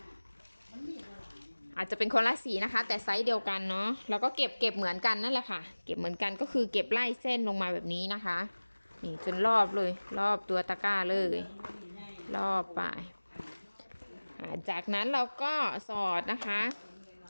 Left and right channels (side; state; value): both; inverted; correlation -1.00